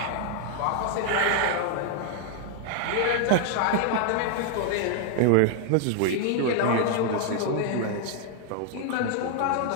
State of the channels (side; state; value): both; different; correlation 0.00